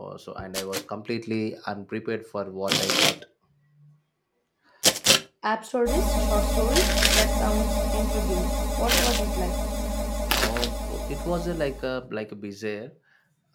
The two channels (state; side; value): identical; both; correlation 1.00